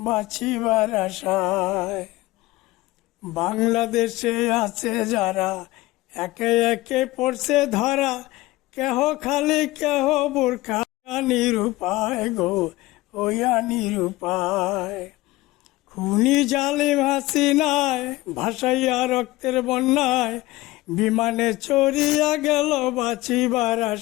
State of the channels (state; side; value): quieter; right; 18.9 dB